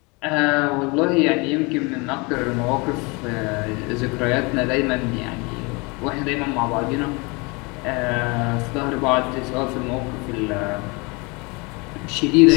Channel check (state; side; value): quieter; right; 28.2 dB